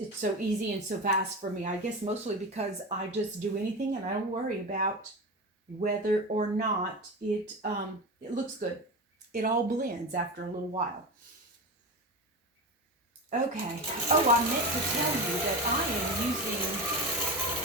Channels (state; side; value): normal; both; correlation 0.24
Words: so easy and so fast for me. I guess mostly because I just do anything and I don't worry about whether or not it looks good. It all blends after a little while. Okay. Oh, I meant to tell you that I am using